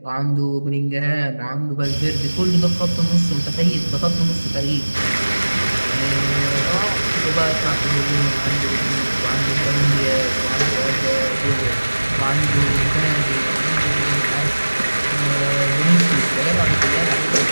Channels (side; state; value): both; inverted; correlation -1.00